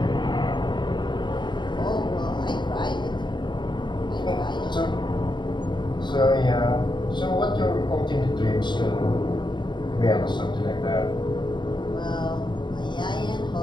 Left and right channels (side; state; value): right; late; 0.22 ms